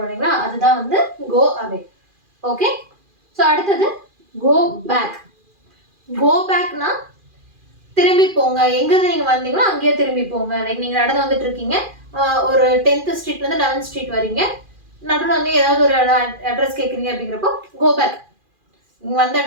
இல்லைங்களா, அதுதான் வந்து கோ அவே. ஓகே. ஸோ அடுத்தது கோ பேக். கோ பேக்னா திரும்பி போங்க, எங்கிருந்து நீங்க வந்தீங்களோ அங்கேயே திரும்பி போங்க. லைக் நீங்க நடந்து வந்துட்டு இருக்கீங்க, ஒரு 10th ஸ்ட்ரீட்ல இருந்து 11th ஸ்ட்ரீட் வரீங்க, நடுவில் வந்து ஏதாவது ஒரு அட்ரஸ் கேட்குறீங்க அப்படிங்கிறப்போ கோ பேக், நீங்க வந்த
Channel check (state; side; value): late; left; 2.4 ms